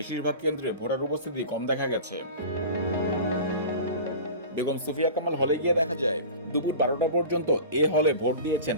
কেন্দ্রে ভোটার উপস্থিতি কম দেখা গেছে। বেগম সুফিয়া কামাল হলে গিয়ে দেখা যায় দুপুর ১২টা পর্যন্ত এ হলে ভোট দিয়েছেন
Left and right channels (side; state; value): both; inverted; correlation -0.35